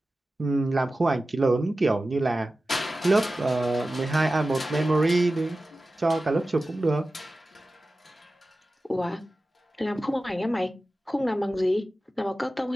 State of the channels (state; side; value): normal; both; correlation 0.95